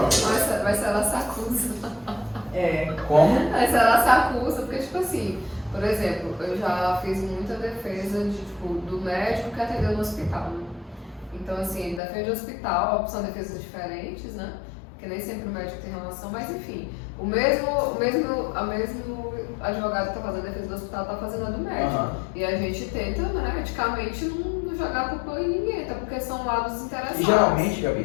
Mas ela se acusa. Como? Mas ela se acusa, porque, tipo assim, por exemplo, eu já fiz muita defesa de, tipo, do médico que atendeu no hospital, né? Então, assim, defende o hospital, são defesas diferentes, né? Porque nem sempre o médico tem relação, mas enfim, o mesmo advogado que está fazendo a defesa do hospital está fazendo a do médico. E a gente tenta, né, eticamente, não jogar culpa em ninguém, até porque são lados interessados. E geralmente,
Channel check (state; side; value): drops out; right; at 12.0 s